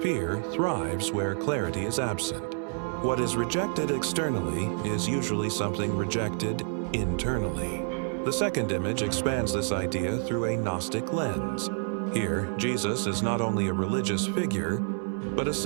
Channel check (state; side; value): silent; left; 59 dB below the other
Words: Fear thrives where clarity is absent. What is rejected externally is usually something rejected internally. The second image expands this idea through a Gnostic lens. Here, Jesus is not only a religious figure, but a